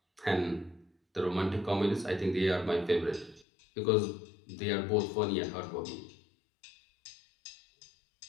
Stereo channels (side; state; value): right; drops out; at 3.5 s